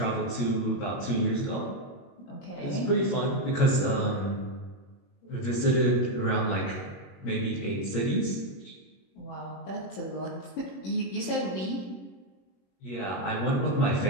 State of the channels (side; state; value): right; late; 21 ms